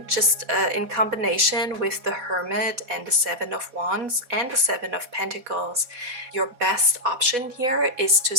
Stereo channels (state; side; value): late; left; 4.1 ms